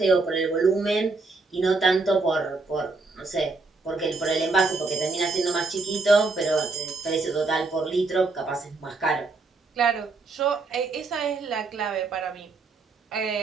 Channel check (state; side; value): quieter; left; 3.7 dB